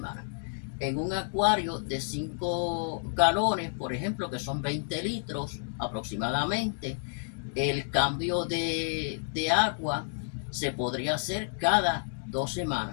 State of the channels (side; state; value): right; silent; digital silence